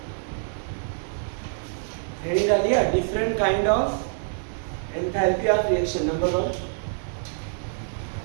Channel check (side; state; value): left; silent; digital silence